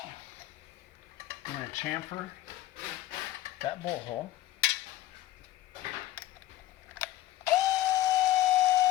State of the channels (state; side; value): quieter; right; 14.8 dB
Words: I'm going to chamfer that bolt hole.